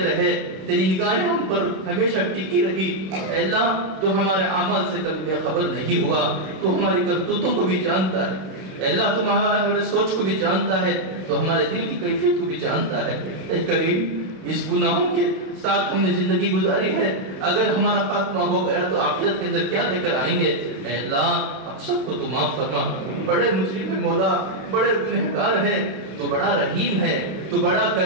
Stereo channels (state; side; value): late; left; 31 ms